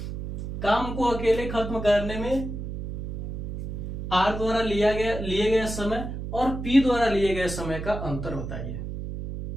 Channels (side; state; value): right; noise; hum, 7 dB below the sound